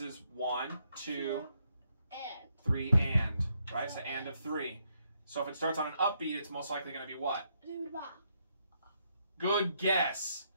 1, 2, And. 3, and right. So and of 3. So if it starts on an upbeat, it's most likely going to be what? Duba. Good guess.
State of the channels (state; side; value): inverted; both; correlation -0.76